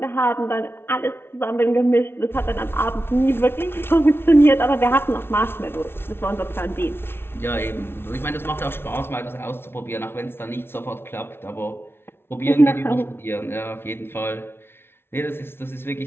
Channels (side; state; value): right; late; 0.11 ms